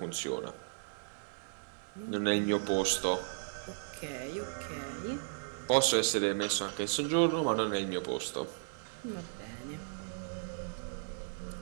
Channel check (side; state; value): left; silent; digital silence